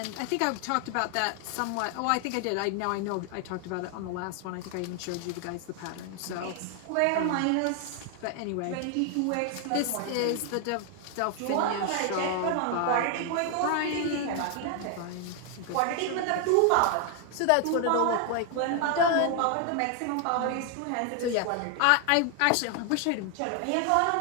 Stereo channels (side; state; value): both; different; correlation 0.00